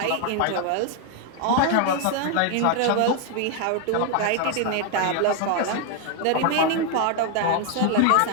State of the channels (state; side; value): different; both; correlation 0.01